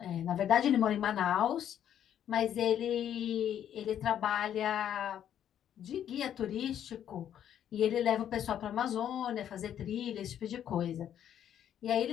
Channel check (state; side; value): quieter; right; 10.1 dB